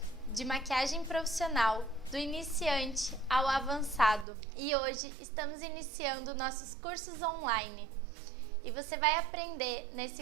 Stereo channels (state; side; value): drops out; left; at 4.2 s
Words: de maquiagem profissional, do iniciante ao avançado. E hoje estamos iniciando nossos cursos online. E você vai aprender